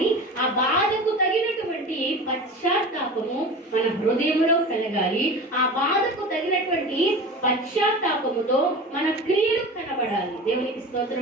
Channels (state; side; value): normal; both; correlation 0.33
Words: ఆ బాధకు తగినటువంటి పశ్చాత్తాపము మన హృదయంలో కలగాలి. ఆ బాధకు తగినటువంటి పశ్చాత్తాపముతో మన క్రియలు కనబడాలి. దేవునికి